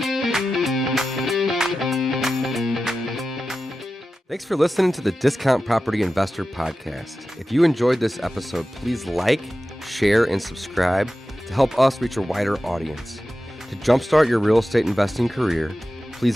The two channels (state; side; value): normal; both; correlation 0.93